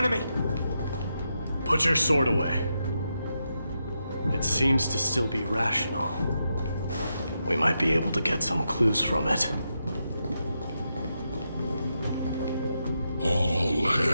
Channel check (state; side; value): inverted; both; correlation -0.85